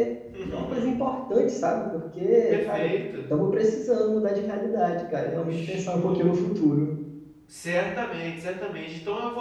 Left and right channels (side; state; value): both; identical; correlation 1.00